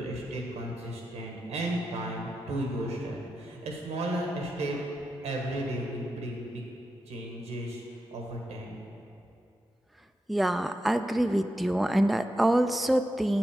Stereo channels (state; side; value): normal; both; correlation 0.87